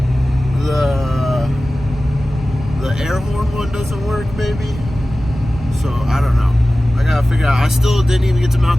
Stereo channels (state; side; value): normal; both; correlation 0.96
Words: The air horn one doesn't work, maybe. So I don't know. I gotta figure out. I still didn't even get to